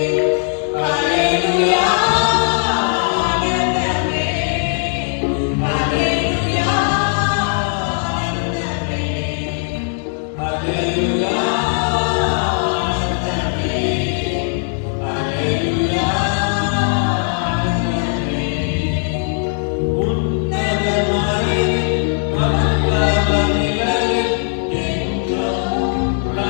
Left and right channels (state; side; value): silent; right; 60 dB below the other